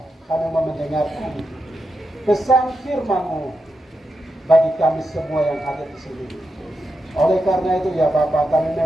kami mendengarkan pesan firman-Mu bagi kami semua yang ada di sini. Oleh karena itu ya Bapa, kami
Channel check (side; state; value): both; normal; correlation 0.87